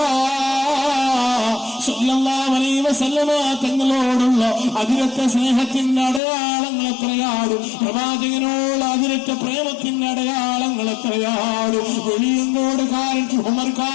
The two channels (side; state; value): right; drops out; at 6.2 s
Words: സല്ലല്ലാഹു അലൈഹി വസല്ലമ തങ്ങളോടുള്ള അതിരറ്റ സ്നേഹത്തിന്റെ അടയാളങ്ങൾ എത്രയാണ്? പ്രവാചകനോട് അതിരറ്റ പ്രേമത്തിന്റെ അടയാളങ്ങൾ എത്രയാണ്? വെളിയങ്കോടുകാരൻ ഉമർ